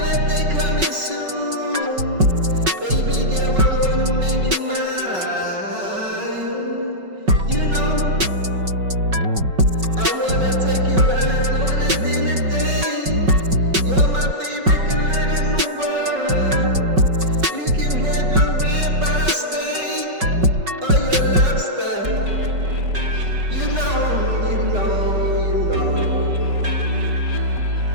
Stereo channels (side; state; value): left; late; 5.3 ms